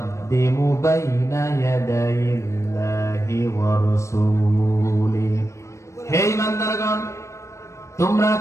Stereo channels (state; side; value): late; right; 0.14 ms